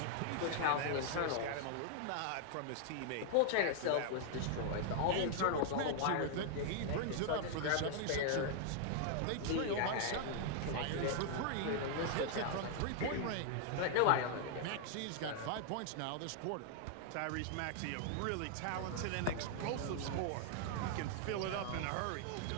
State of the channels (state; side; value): different; both; correlation 0.00